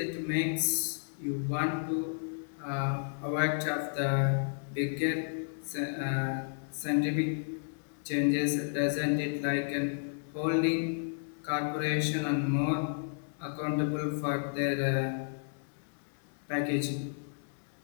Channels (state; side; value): silent; right; digital silence